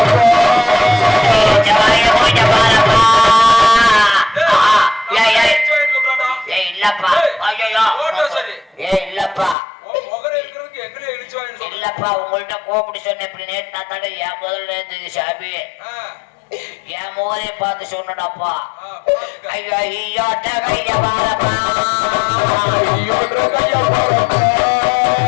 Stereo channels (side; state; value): right; drops out; at 9.6 s